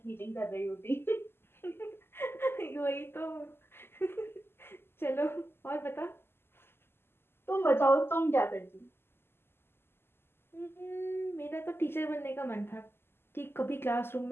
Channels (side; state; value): right; late; 0.11 ms